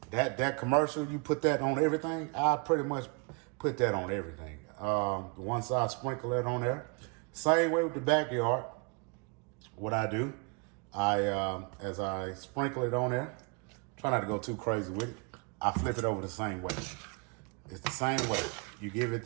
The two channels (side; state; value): left; quieter; 34.2 dB